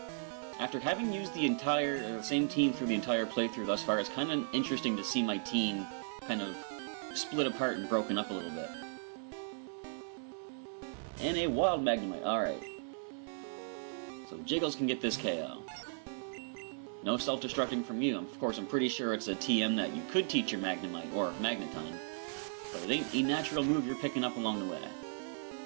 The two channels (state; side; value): silent; left; digital silence